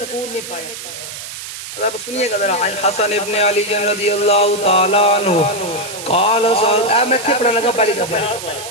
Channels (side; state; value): right; noise; hiss, 10 dB below the sound